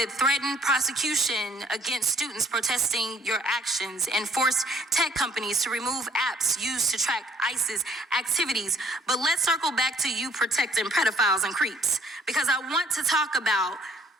threatened prosecution against students protesting your actions and forced tech companies to remove apps used to track ISIS activities. But let's circle back to you protecting pedophiles and creeps, because I want to talk about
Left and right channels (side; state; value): both; normal; correlation 0.59